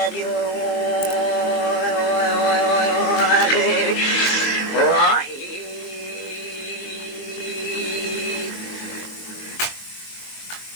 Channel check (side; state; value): right; late; 22 ms